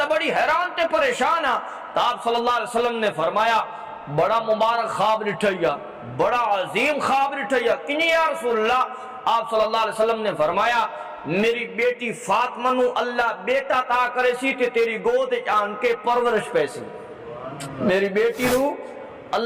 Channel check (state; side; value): identical; both; correlation 1.00